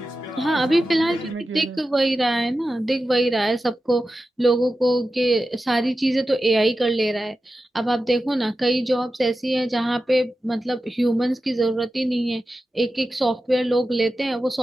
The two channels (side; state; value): both; normal; correlation 0.93